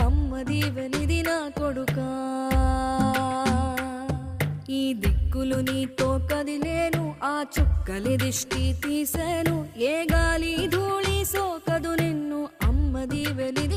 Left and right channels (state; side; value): identical; both; correlation 1.00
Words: అమ్మది వెలిది నా కొడుకా ఈ దిక్కులు నీతో కదిలేను ఆ చుక్కలి దిష్టి తీసేను ఏ గాలి ధూళి సోకదు నిన్ను అమ్మది